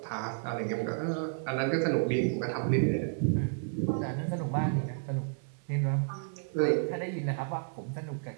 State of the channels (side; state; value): left; silent; 57 dB below the other